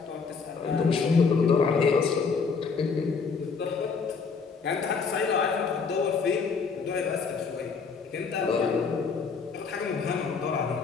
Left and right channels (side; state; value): right; quieter; 5.2 dB